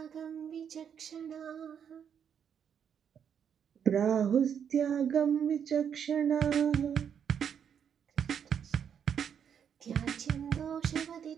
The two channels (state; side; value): quieter; left; 8.0 dB